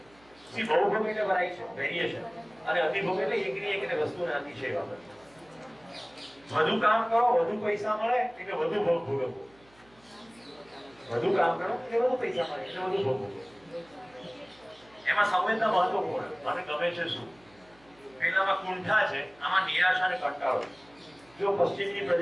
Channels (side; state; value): right; noise; hum, 29 dB below the sound